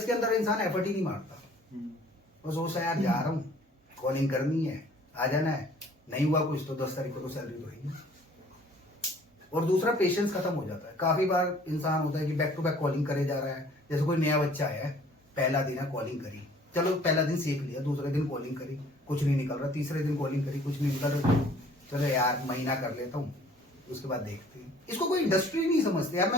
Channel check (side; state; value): both; normal; correlation 0.54